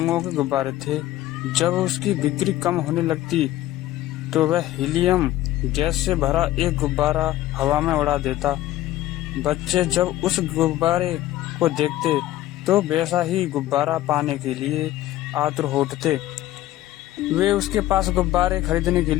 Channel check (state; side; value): quieter; right; 14.9 dB